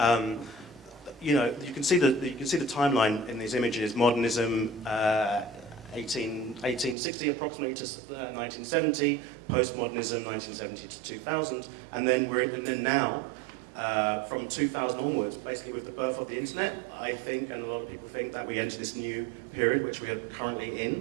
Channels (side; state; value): left; drops out; at 7.0 s